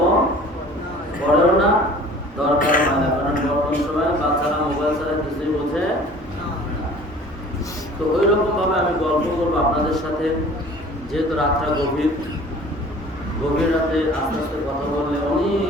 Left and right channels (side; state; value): both; normal; correlation 0.47